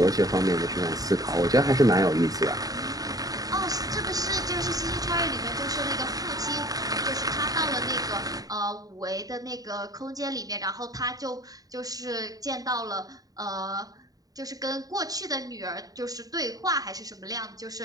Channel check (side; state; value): left; late; 0.18 ms